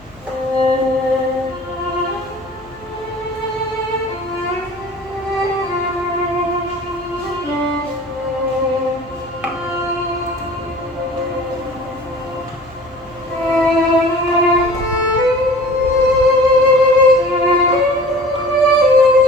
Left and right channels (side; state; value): left; noise; hum, 25 dB below the sound